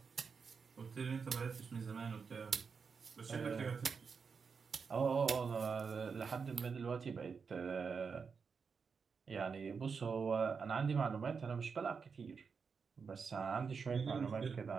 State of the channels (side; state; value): left; quieter; 5.6 dB